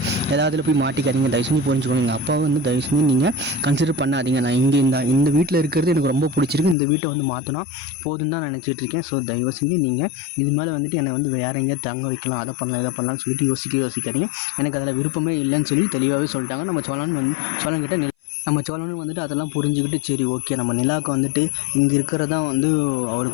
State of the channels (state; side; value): drops out; right; at 6.8 s